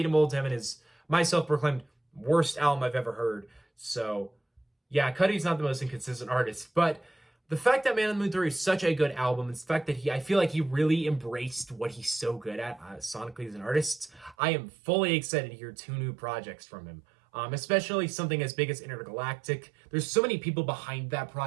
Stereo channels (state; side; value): drops out; left; at 14.4 s